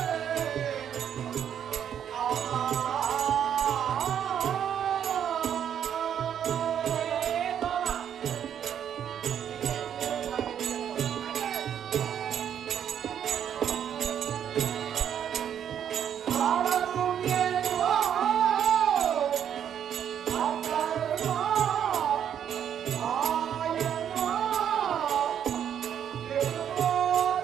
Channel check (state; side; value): quieter; left; 9.1 dB